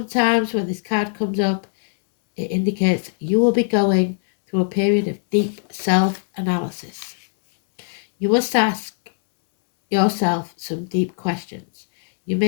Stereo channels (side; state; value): right; silent; 65 dB below the other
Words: when this card comes up, it indicates you will be going through a period of deep self-analysis. You must ask yourself some deep questions. You